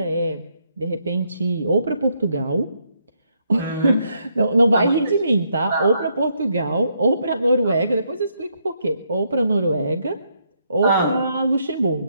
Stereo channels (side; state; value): both; inverted; correlation -0.75